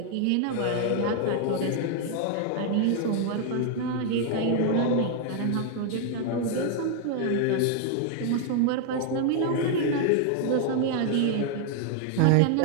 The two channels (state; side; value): different; both; correlation 0.00